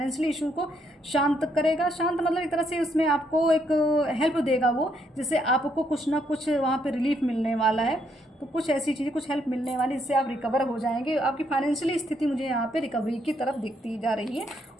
इशू को शांत करेगा। शांत मतलब एक तरह से उसमें आपको एक हेल्प देगा वो, जिससे आपको कुछ ना कुछ वहाँ पर रिलीफ मिलने वाला है। तो कुछ ऐसी चीज़ें, कुछ हेल्प मिलने वाली, जिससे आप रिकवर हो जाएंगे। आपकी फाइनेंशियली स्थिति मुझे यहाँ पे रिकवरी की तरफ दिखती जा रही है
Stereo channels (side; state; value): both; normal; correlation 0.74